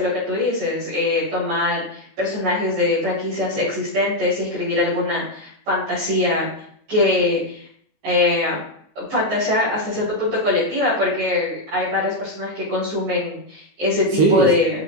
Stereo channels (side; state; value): left; late; 20 ms